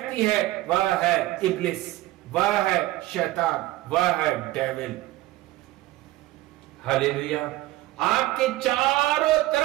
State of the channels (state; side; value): quieter; left; 17.1 dB